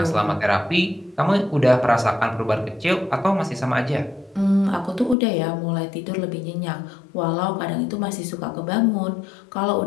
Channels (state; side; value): drops out; right; at 5.2 s